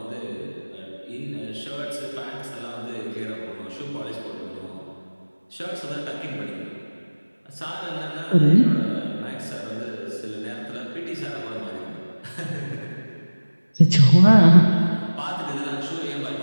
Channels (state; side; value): inverted; both; correlation -1.00